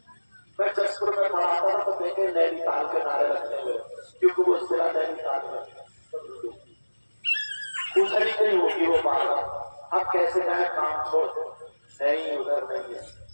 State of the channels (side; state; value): both; inverted; correlation -1.00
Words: میں جسپور میں پڑھاتا ہوں تو دیکھیں نینی تال کے نعرے لگتے ہوئے, کیونکہ وہ ضلع نینی تال میں ادھر ہی نہیں ہوگی وہ بات. اب کیسے جائیں کام چھوڑ دو نہیں ادھر نہیں ہے